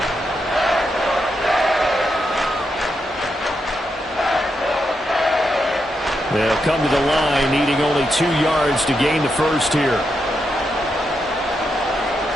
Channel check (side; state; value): both; normal; correlation 0.83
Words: They'll come to the line, needing only 2 yards to gain the first here.